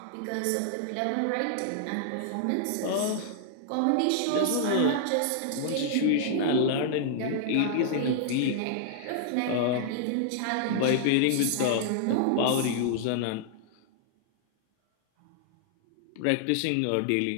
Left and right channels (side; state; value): both; different; correlation -0.01